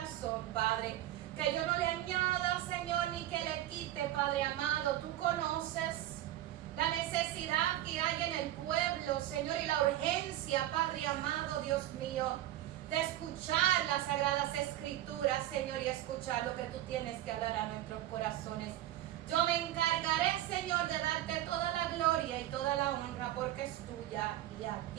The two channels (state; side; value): quieter; left; 14.0 dB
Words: Padre. Que yo no le añada, Señor, ni que le quite, Padre amado. Tú conoces la necesidad que hay en el pueblo, Señor, y la urgencia, Padre amado, Dios mío, de escuchar las sagradas escrituras, Señor, y escuchar lo que tú tienes que hablar a nuestros corazones. Yo me encargaré, Señor, de darte toda la gloria y toda la honra, porque es tuya y a